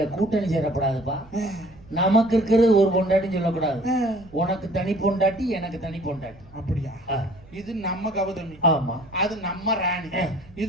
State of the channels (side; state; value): right; noise; rumble, 24 dB below the sound